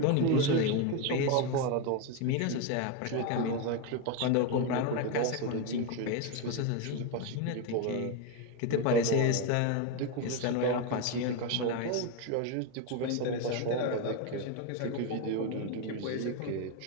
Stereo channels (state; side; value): different; both; correlation 0.02